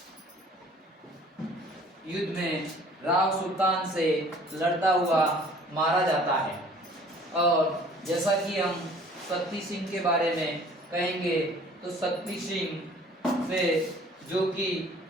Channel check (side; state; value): both; normal; correlation 0.52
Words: में राव सुल्तान से लड़ता हुआ मारा जाता है। और जैसा कि हम शक्ति सिंह के बारे में कहेंगे तो शक्ति सिंह से जो कि